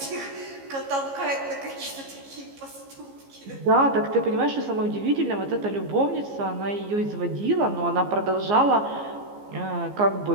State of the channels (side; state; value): left; late; 15 ms